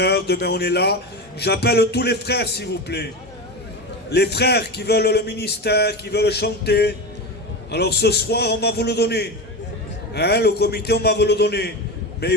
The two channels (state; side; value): normal; both; correlation 0.22